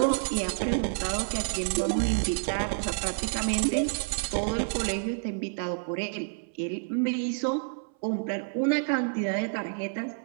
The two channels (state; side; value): silent; left; 59 dB below the other